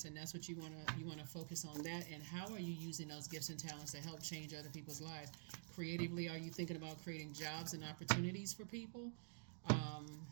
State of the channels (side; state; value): left; silent; digital silence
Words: and that's what you wanna focus on that. And how are you using those gifts and talents to help change other people's lives? Creatively, are you thinking about creating jobs and opportunities for people?